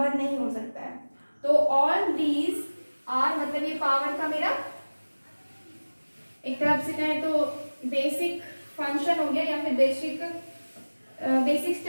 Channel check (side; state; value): both; inverted; correlation -1.00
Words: नहीं हो सकता है। तो ऑल दीज आर, मतलब ये पावर का मेरा एक तरफ से कहें तो बेसिक फंक्शन हो गया, या फिर बेसिक